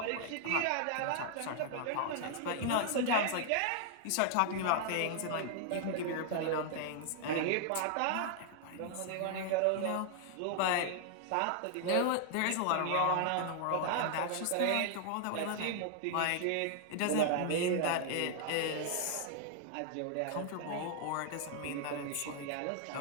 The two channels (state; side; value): different; both; correlation 0.00